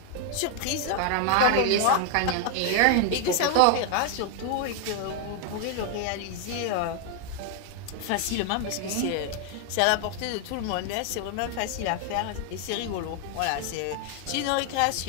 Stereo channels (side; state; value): both; different; correlation 0.00